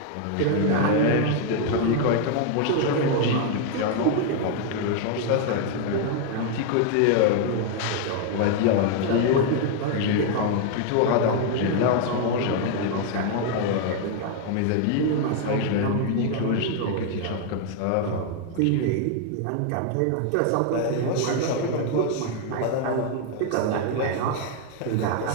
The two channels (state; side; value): different; both; correlation 0.01